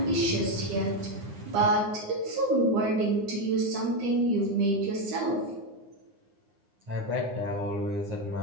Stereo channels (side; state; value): left; late; 9.8 ms